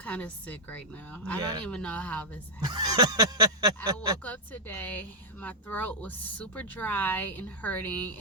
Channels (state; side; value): normal; both; correlation -0.08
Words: of sick right now. Yeah. I don't even know how this happened. I woke up today, my throat was super dry and hurting,